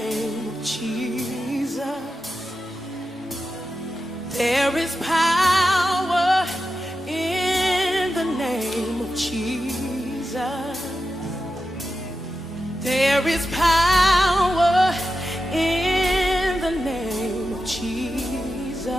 There is power in the name of Jesus. There is power in the name of Jesus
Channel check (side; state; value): both; normal; correlation 0.90